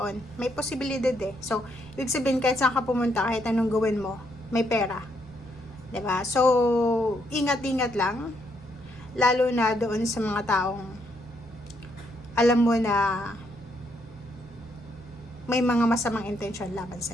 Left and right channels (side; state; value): right; noise; rumble, 27 dB below the sound